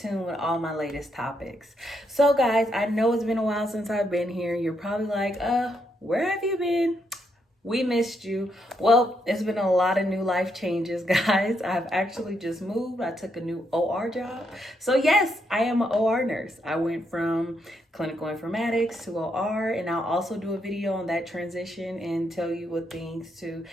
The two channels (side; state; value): both; normal; correlation 0.78